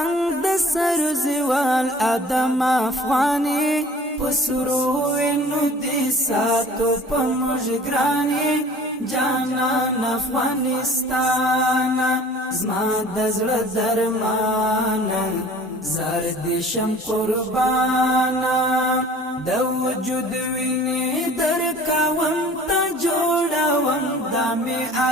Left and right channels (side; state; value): both; normal; correlation 0.47